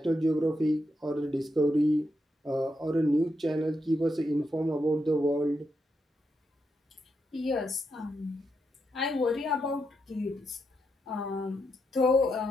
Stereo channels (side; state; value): both; normal; correlation 0.83